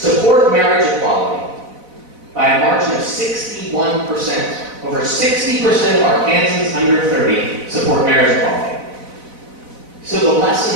marriage equality by a margin of 61%. Over 60% of Arkansans under 30 support marriage equality. So the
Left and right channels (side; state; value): left; late; 4.0 ms